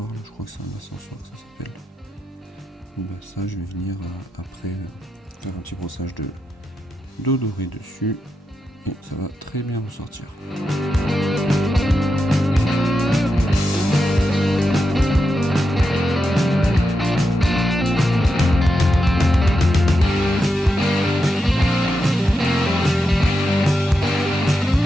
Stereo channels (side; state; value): both; normal; correlation 0.87